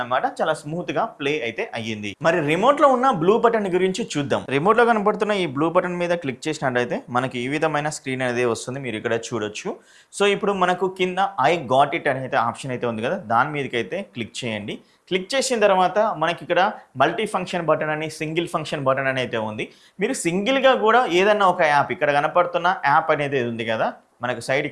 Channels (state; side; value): identical; both; correlation 1.00